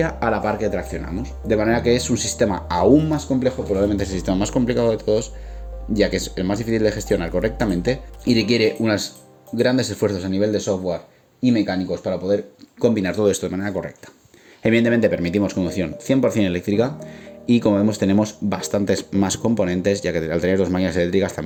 a la par que traccionamos, de manera que es un sistema aún más complejo, probablemente es el sistema más complicado de todos, ya que es el más difícil de gestionar correctamente y requiere unos grandes esfuerzos a nivel de software y mecánicos para poder combinar todo esto de manera correcta. Evidentemente permitimos conducción 100% eléctrica y como vemos tenemos bastantes más componentes, ya que al tener dos máquinas eléctricas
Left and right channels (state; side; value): identical; both; correlation 1.00